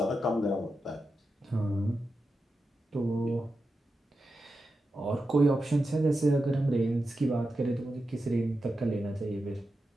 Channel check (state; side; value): normal; both; correlation 0.90